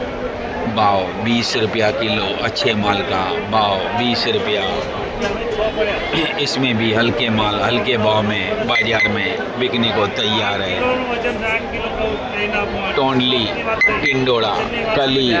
भाव 20 रुपया किलो। अच्छे माल का भाव 20 रुपया। इसमें भी हल्के माल हल्के भाव में बाजार में बिकने को तैयार है। टोंडली, टिंडोड़ा, कली,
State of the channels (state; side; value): identical; both; correlation 1.00